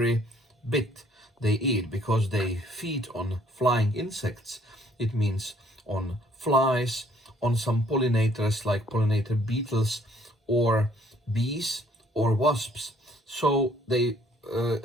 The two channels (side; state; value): both; normal; correlation 0.62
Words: bit they eat, because they feed on flying insects. It means on flies, on some pollinators like pollinator beetles or bees or wasps. So they